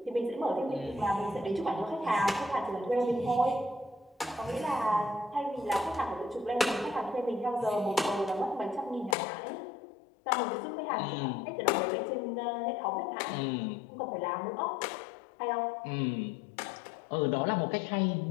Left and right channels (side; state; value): right; drops out; at 9.2 s